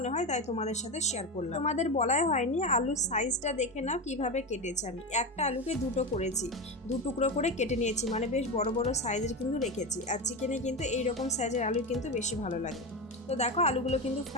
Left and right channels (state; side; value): normal; both; correlation 0.19